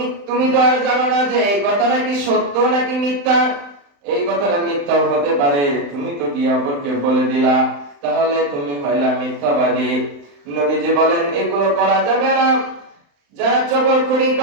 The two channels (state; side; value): late; left; 35 ms